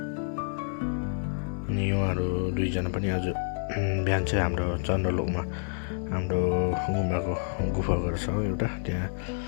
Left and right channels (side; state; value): right; silent; digital silence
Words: अनि उहाँहरू दुईजना पनि आज बिहान चाहिँ हाम्रो चन्द्रलोकमा हाम्रो गुफा घर छ एउटा,